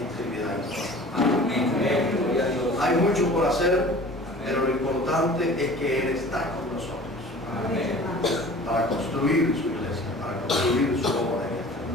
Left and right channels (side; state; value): both; normal; correlation 0.44